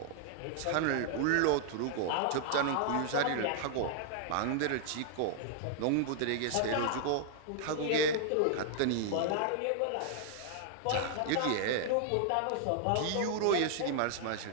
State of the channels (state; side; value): different; both; correlation 0.00